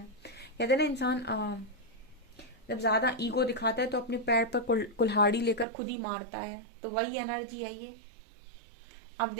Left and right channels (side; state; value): left; drops out; at 5.7 s